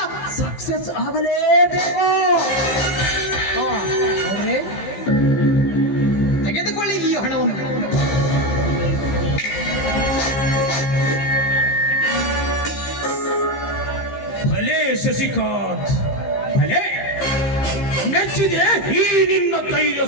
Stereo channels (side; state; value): right; late; 15 ms